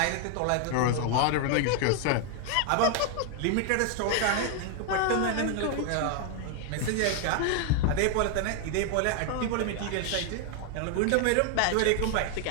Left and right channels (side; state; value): both; different; correlation 0.00